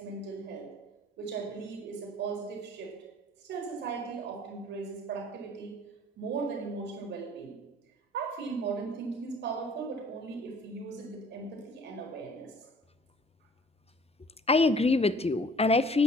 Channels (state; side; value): normal; both; correlation 0.52